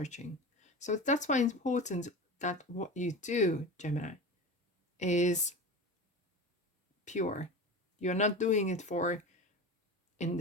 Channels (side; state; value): both; normal; correlation 0.29